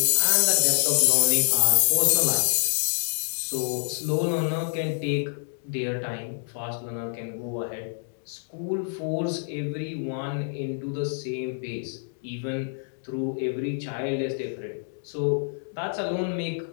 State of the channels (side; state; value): right; silent; digital silence